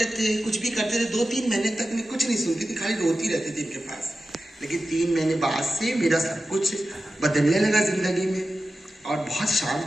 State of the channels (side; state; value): both; normal; correlation 0.93